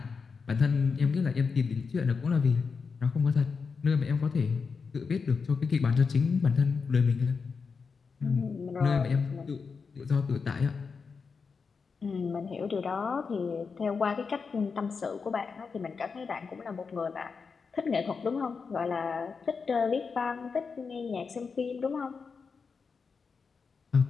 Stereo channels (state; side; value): quieter; right; 5.2 dB